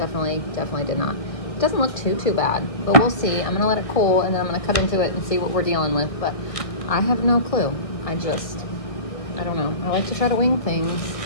did not. It doesn't look too bad, but we'll see. I'm gonna let it cool and then I'm gonna cut into it and see what we're dealing with, but I have no clue. I don't know. I like to try to wing things,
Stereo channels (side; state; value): right; late; 1.6 ms